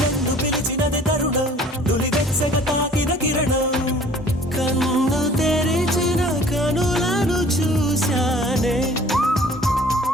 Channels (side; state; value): both; normal; correlation 0.51